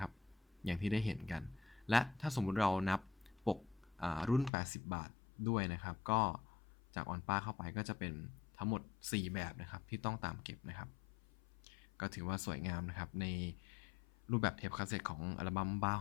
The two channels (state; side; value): drops out; right; at 4.5 s